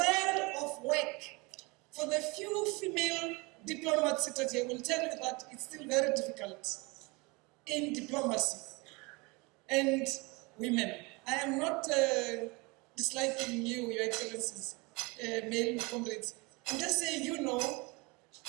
of work. For the few female diplomats seated here, will tell you that it's still very difficult in diplomacy and women. I am not disliking you, Your Excellencies, male comrades. I'm just saying you know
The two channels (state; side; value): quieter; left; 26.5 dB